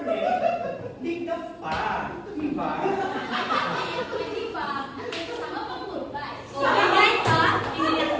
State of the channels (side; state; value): both; identical; correlation 1.00